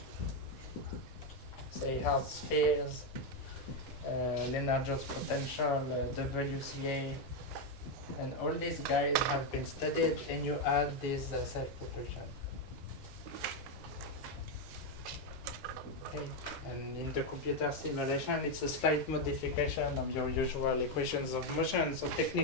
say hard spheres, Lennard-Jones potential, WCA, and all these guys have been studied, and you add this self-propulsion. Okay. And in the computer simulation, it's a slight modification of your usual equations of motion. So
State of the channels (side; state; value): both; normal; correlation 0.04